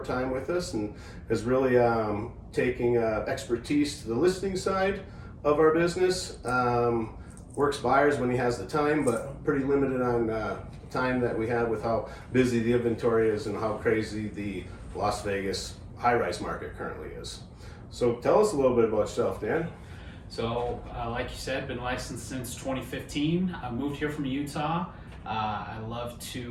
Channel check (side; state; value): both; identical; correlation 1.00